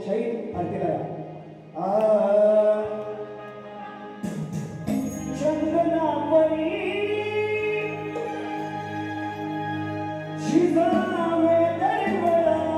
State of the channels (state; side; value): identical; both; correlation 1.00